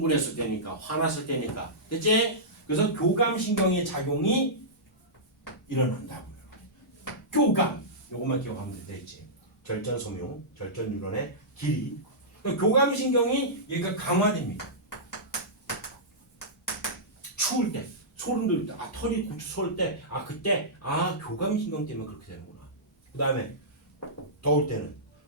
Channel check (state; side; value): normal; both; correlation -0.16